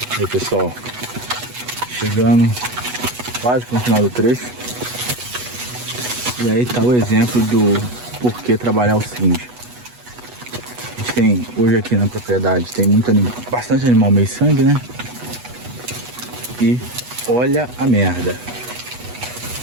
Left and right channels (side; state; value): left; late; 8.2 ms